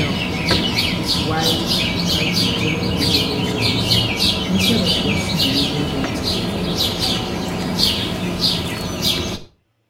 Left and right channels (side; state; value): both; identical; correlation 1.00